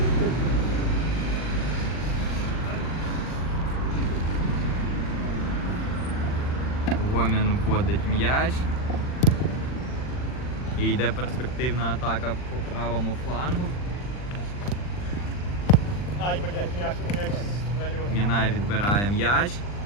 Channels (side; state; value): right; late; 40 ms